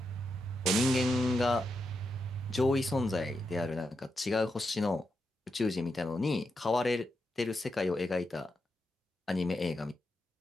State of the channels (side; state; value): both; normal; correlation 0.85